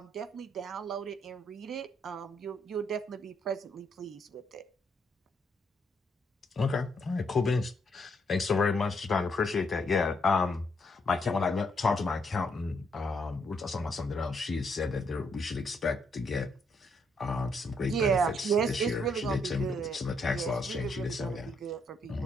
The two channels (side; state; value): both; normal; correlation 0.74